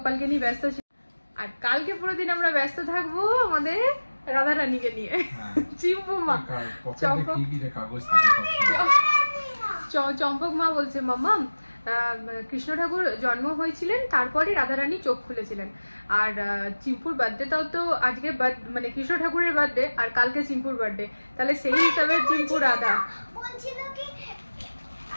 নিয়ে ব্যস্ত ছিলাম, আর কালকে পুরো দিন আমরা ব্যস্ত থাকবো আমাদের রাধা রানীকে নিয়ে। চিম্পু মা, চম্পক মা বলছে মাম্মা কৃষ্ণ ঠাকুর জন্ম হয়েছিলেন, তারপরে রাধারানী চোখ খুলেছিলেন। আর চিম্পুর বার্থডেটাও তো আজকে, মানে কৃষ্ণ ঠাকুরের বার্থডে আর কালকে চিম্পুর বার্থডে, তাহলে সেই হিসাবে চিম্পু রাধা বলছিল কি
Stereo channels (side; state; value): both; inverted; correlation -1.00